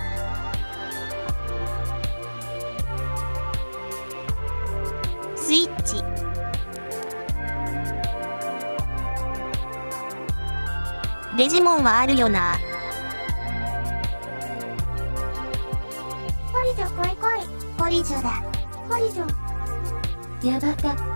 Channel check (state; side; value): inverted; both; correlation -1.00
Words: スイッチ。デジモンはあるよな。ポリジョ来い来い。ポリジョだ。ポリジョ。八幡